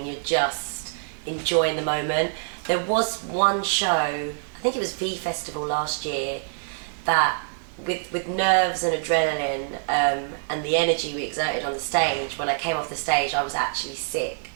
you're just enjoying the moment. There was one show, I think it was V Festival last year, that with nerves and adrenaline and the energy we exerted on the stage, when I came off the stage I was actually sick.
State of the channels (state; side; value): silent; left; digital silence